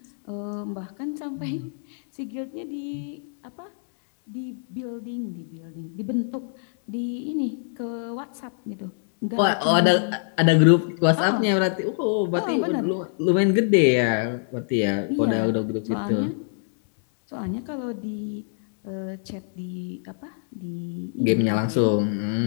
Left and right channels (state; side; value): silent; right; digital silence